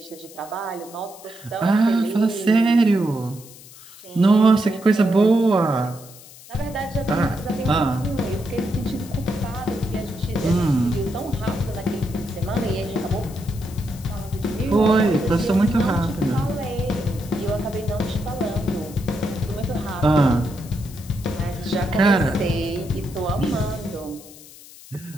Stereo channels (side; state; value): left; noise; hiss, 19 dB below the sound